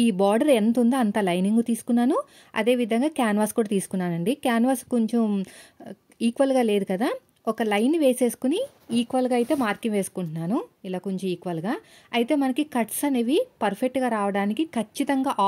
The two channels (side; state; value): both; identical; correlation 1.00